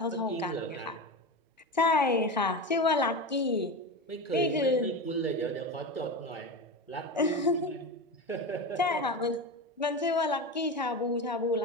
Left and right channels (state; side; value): normal; both; correlation 0.22